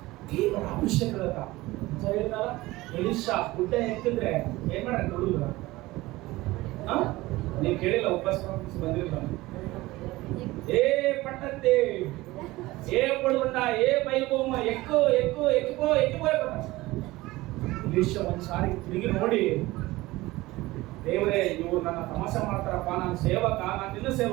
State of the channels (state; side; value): quieter; left; 19.3 dB